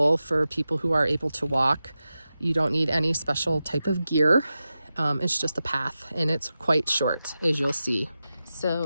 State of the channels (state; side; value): inverted; both; correlation -0.92